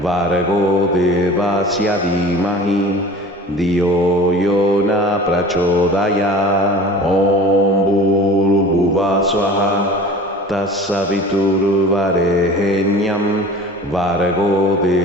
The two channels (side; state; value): both; normal; correlation 0.41